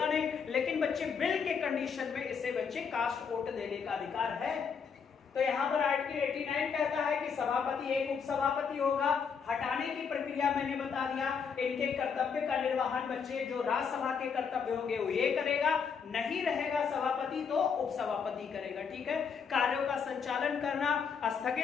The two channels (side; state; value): right; quieter; 6.3 dB